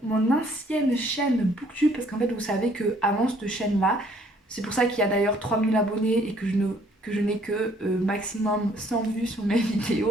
ancienne chaîne Booktube parce qu'en fait vous savez que avant cette chaîne là, c'est pour ça qu'il y a d'ailleurs 3000 abonnés et que je n'ai que maximum 100 vues sur mes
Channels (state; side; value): normal; both; correlation 0.61